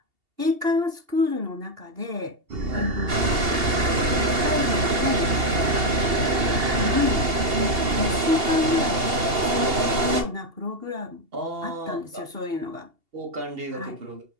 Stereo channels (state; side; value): late; left; 2.8 ms